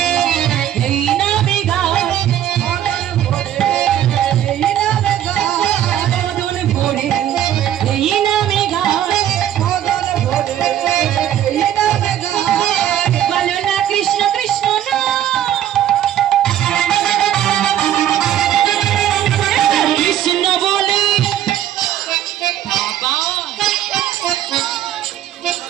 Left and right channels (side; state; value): left; quieter; 11.4 dB